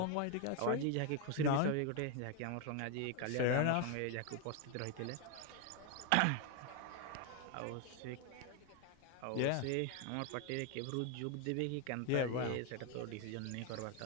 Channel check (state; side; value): different; both; correlation 0.01